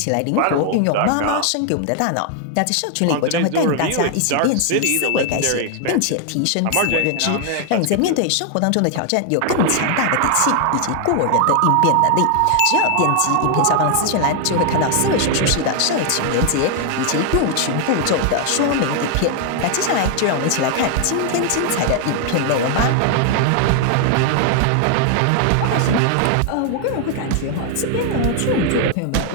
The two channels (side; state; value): both; different; correlation 0.00